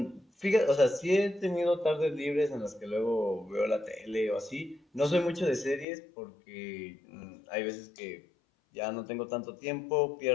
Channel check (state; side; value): drops out; right; at 5.9 s